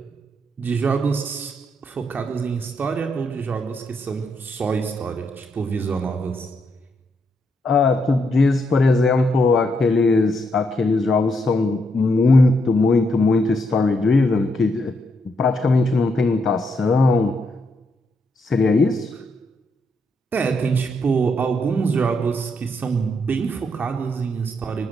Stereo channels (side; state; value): both; normal; correlation 0.78